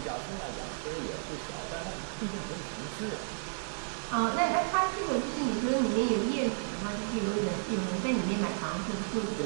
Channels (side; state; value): left; silent; digital silence